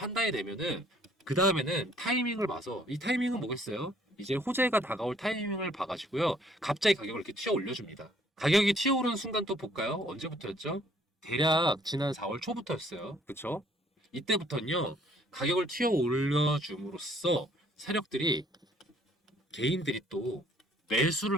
되면은, 그 다음에는 타이밍을 봐서, 이 타이밍은 뭐겠어요? 이제 호재가 다가올 타이밍을 봐가지고요, 갑자기 가격을 이렇게 튀어 올려줍니다. 가격이 튀어오르는 순간 또 볼까요? 언제부터였죠? 대략 지난 4월 초부터였어요. 그쵸? 이때부터는요, 가격을 튀어 올려줌으로써 세력들이, 개인들이 또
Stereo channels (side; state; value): both; normal; correlation 0.62